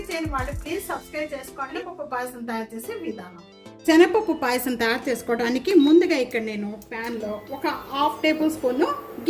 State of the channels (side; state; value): both; identical; correlation 1.00